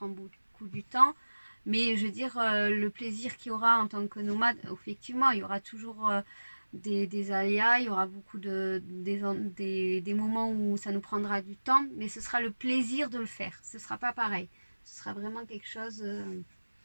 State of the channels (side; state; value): both; inverted; correlation -1.00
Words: beaucoup du temps. Mais je veux dire, le plaisir qu'il y aura en tant que nomade, effectivement, il y aura toujours des aléas, il y aura beaucoup des moments où ça nous prendra du temps, mais ce sera le plaisir de le faire. Ce sera pas pareil. Ce sera vraiment quelque chose...